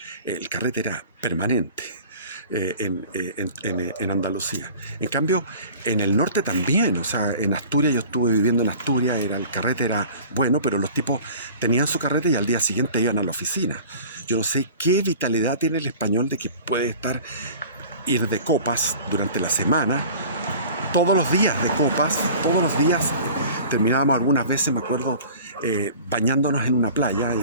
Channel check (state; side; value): inverted; both; correlation -0.43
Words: carrete era permanente. En Andalucía. En cambio, en el norte también, o sea, en Asturias, yo estuve viviendo en Asturias, el carrete era bueno, pero los tipos tenían su carrete y al día siguiente iban a la oficina. Yo no sé qué vitalidad tiene el español de que puede ir de copas durante la semana, todos los días de copas, todos los días. Terminábamos algunas veces, me acuerdo, bañándonos en una playa,